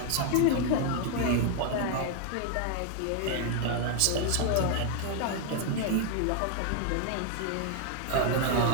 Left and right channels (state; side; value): different; both; correlation 0.00